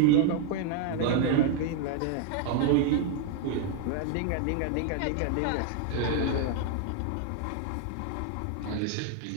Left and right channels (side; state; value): both; different; correlation 0.00